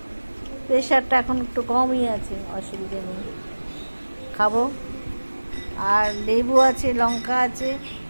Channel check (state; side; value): inverted; both; correlation -1.00